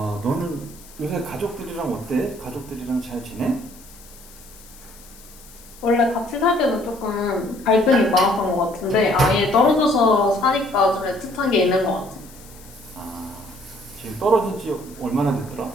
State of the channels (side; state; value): left; noise; hiss, 22 dB below the sound